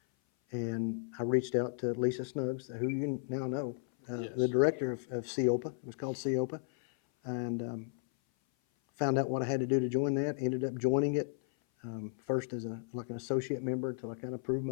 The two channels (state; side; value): silent; right; 55 dB below the other